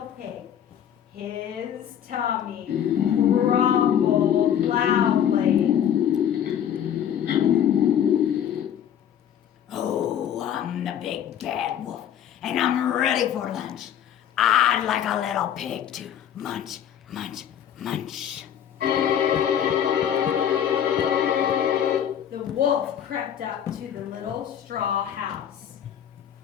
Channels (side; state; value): right; quieter; 9.6 dB